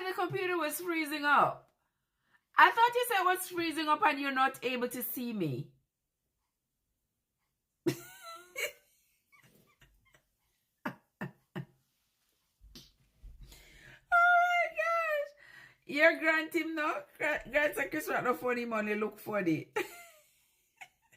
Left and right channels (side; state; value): both; identical; correlation 1.00